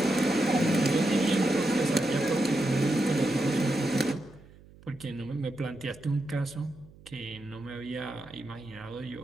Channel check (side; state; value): right; noise; hum, 23 dB below the sound